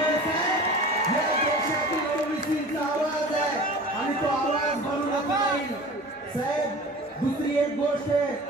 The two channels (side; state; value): both; normal; correlation 0.39